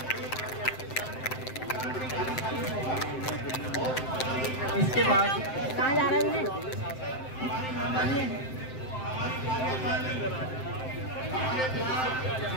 इसके बाद कहाँ जा रहा है?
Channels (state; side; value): late; right; 7.7 ms